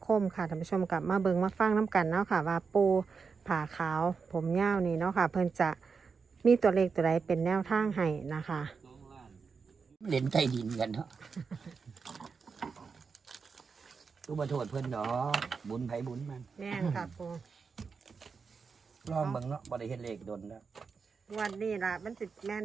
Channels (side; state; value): left; quieter; 5.3 dB